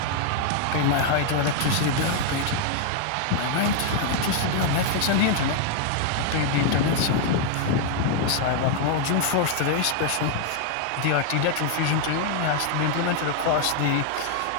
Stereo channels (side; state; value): both; different; correlation 0.00